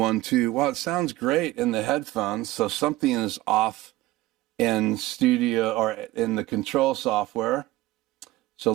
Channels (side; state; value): left; quieter; 17.2 dB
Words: 2. Well, it sounds great in the headphones, so something is off in studio or in the control software. So